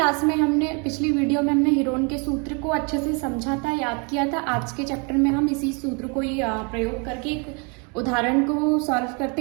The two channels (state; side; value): quieter; left; 33.9 dB